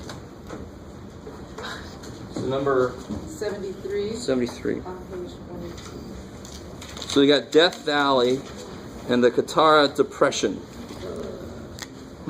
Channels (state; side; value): identical; both; correlation 1.00